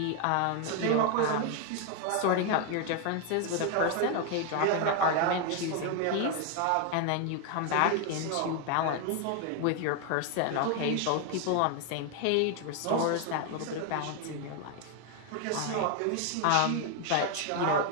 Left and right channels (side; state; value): both; different; correlation 0.01